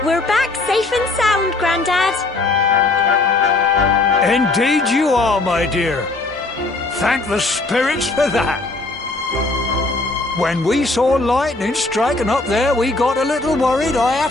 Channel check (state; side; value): quieter; right; 3.2 dB